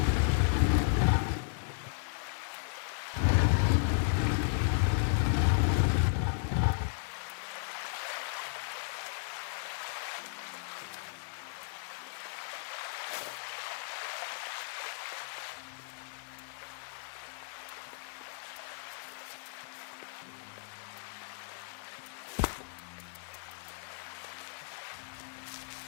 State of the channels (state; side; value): silent; right; 55 dB below the other